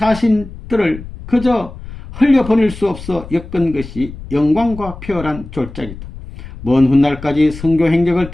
그저 흘려보낼 수 없어 엮은 것이 영광과 표열한 졸작이다. 먼 훗날까지 선교 행적을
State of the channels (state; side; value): noise; left; rumble, 13 dB below the sound